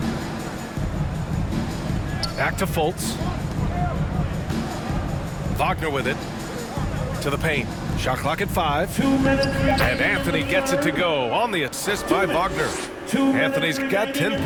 Back to Fultz. Wagner with it. To the paint. Shot clock at 5. 2 minutes. And Anthony gets it to go on the assist by Wagner. Anthony's got 10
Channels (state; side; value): identical; both; correlation 1.00